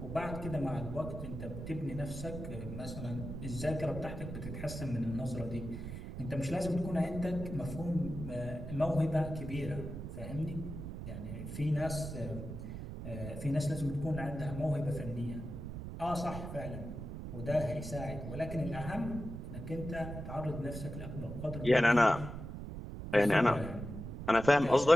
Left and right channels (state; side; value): noise; right; rumble, 8 dB below the sound